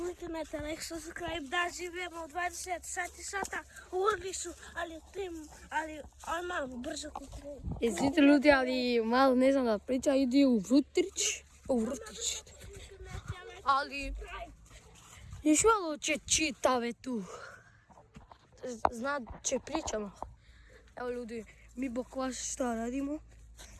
like, subscribe, da živimo 20 sata u lesu, ali odmah brzo kliknete. Izvite ljudi, ali malo ne znam da priča, ide u vrtić. Ali još malo će čitave tu. znat će pričamo. Evo ljudi, mi bok vas šta radimo.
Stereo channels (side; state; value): both; identical; correlation 1.00